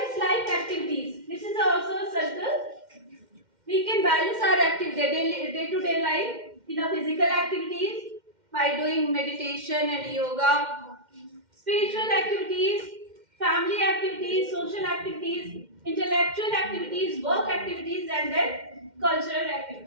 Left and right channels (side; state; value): left; late; 2.1 ms